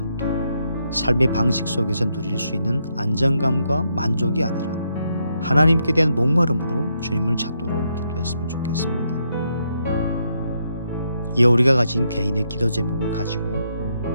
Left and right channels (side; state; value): both; inverted; correlation -0.78